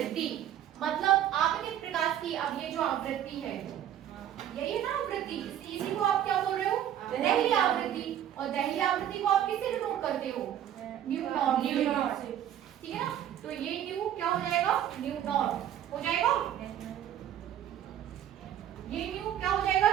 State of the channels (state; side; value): quieter; left; 10.9 dB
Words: मतलब आपतित प्रकाश की, अब ये जो आवृत्ति है, यही है ना आवृत्ति, इसी को आप क्या बोल रहे हो? दहली आवृत्ति। और दहली आवृत्ति को आप किससे डिनोट करते हो? न्यू नॉट, ठीक है ना। तो ये न्यू क्या हो जाएगा? न्यू नॉट हो जाएगा। ये न्यू क्या हो जाएगा?